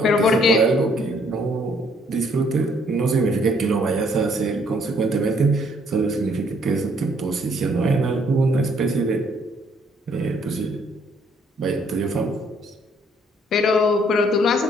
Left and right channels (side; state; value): both; normal; correlation 0.65